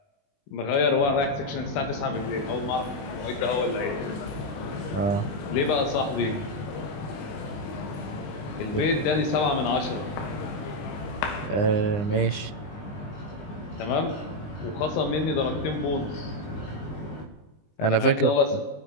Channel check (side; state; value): right; late; 20 ms